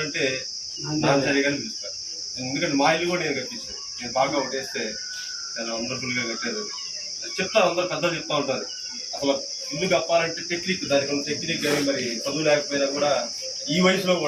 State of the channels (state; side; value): identical; both; correlation 1.00